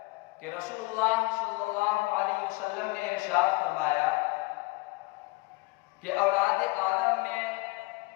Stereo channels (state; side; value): quieter; right; 24.0 dB